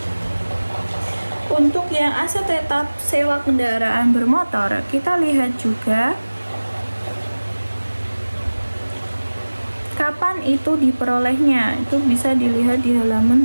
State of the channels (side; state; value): both; inverted; correlation -1.00